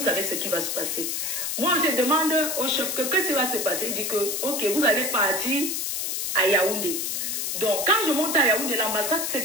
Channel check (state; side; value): noise; left; hiss, 1 dB below the sound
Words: ce qui va se passer? Moi, je demande au chef que qu'est-ce qui va se passer. Il dit que, ok, vous allez partir à Yaoundé. Donc, quand je monte à Yaoundé, l'ambassade sait